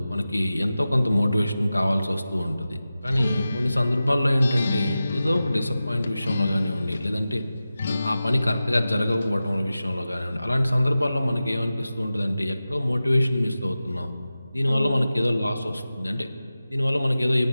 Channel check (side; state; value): both; inverted; correlation -0.94